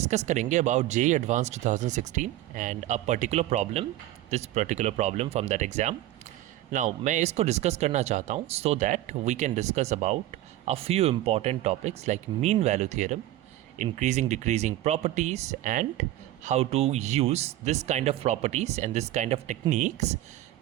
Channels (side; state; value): left; quieter; 14.8 dB